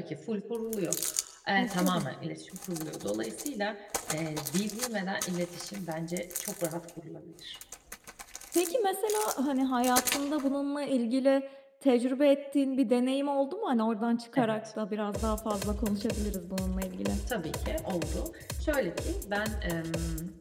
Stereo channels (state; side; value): identical; both; correlation 1.00